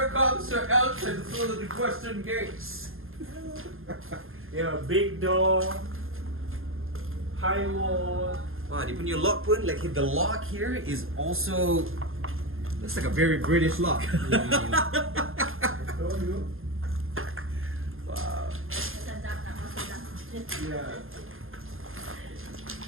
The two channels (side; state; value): left; late; 0.60 ms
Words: comes Sir Elton through the western gates. Yeah, big door, high wall. Wow, dia punya lock pun, like the lock here is also looks like a very British lock. Wow. Yeah.